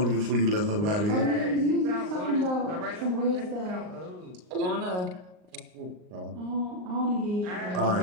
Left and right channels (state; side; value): late; left; 38 ms